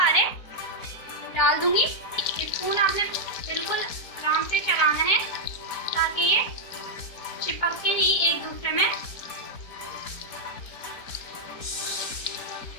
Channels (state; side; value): late; right; 4.2 ms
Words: डाल दूंगी। स्पून आपने बिल्कुल आराम से चलाना है ताकि ये चिपक के नहीं एक दूसरे में।